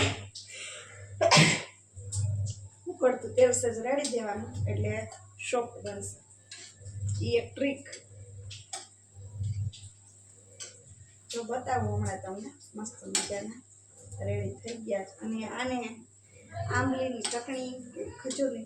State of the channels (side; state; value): both; identical; correlation 1.00